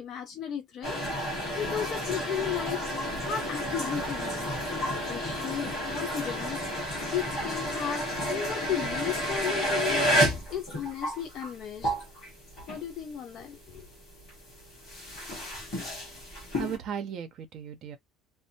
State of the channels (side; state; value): both; normal; correlation 0.47